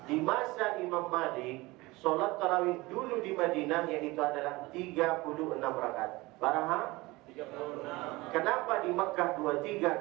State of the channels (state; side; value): quieter; left; 21.6 dB